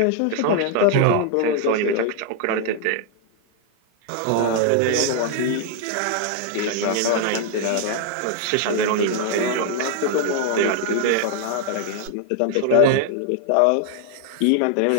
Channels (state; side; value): different; both; correlation 0.00